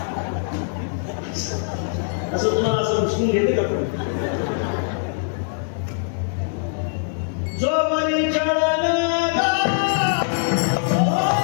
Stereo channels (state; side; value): silent; right; digital silence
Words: असं तुम्हाला असं उचलून घेते का? पण जो वरी चढला